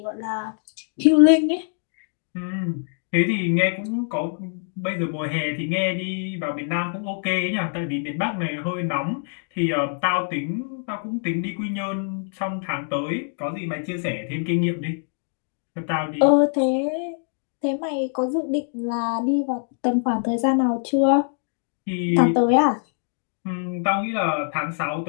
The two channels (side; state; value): right; silent; 62 dB below the other